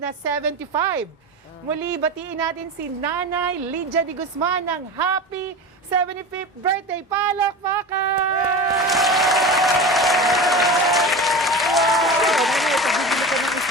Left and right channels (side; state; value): both; normal; correlation 0.28